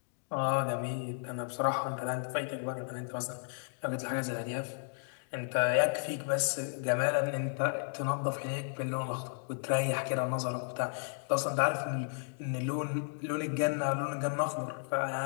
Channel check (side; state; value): right; silent; digital silence